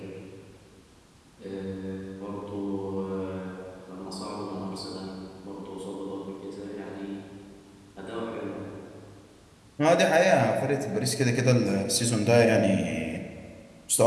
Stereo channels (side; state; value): both; identical; correlation 1.00